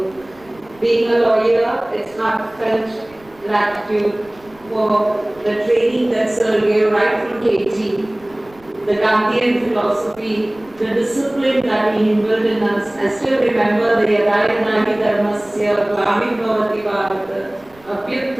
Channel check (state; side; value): noise; right; rumble, 27 dB below the sound